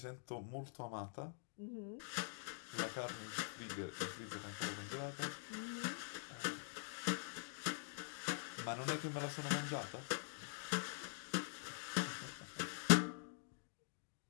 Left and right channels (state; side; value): silent; right; digital silence